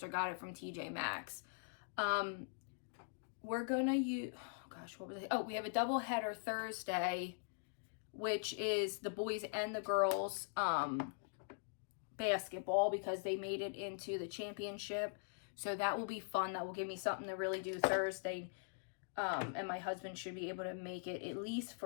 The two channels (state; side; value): silent; right; digital silence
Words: got it from TJ Maxx. We're gonna use, oh gosh, what was it? Oh, we have a double header Thursday, which is the boys and the girls basketball, because they made it into the championship. So that will be fun. That will give me something to really do Thursday. And my husband should be able to make it at least